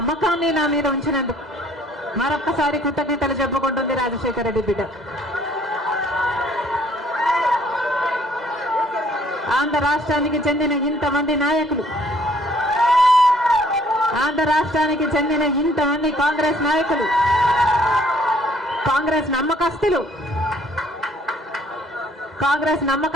నా మీద ఉంచినందుకు మరొక్కసారి కృతజ్ఞతలు చెప్పుకుంటుంది రాజశేఖర రెడ్డి బిడ్డ. ఆంధ్ర రాష్ట్రానికి చెందిన ఇంతమంది నాయకులు, ఆంధ్ర రాష్ట్రానికి చెందిన ఇంతమంది కాంగ్రెస్ నాయకులు, కాంగ్రెస్ నమ్మకస్తులు,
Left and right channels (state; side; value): normal; both; correlation 0.60